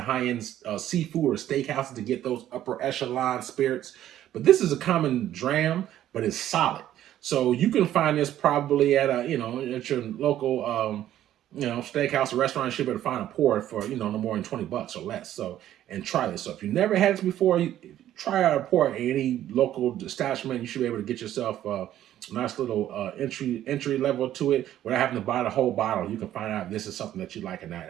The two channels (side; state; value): left; quieter; 12.2 dB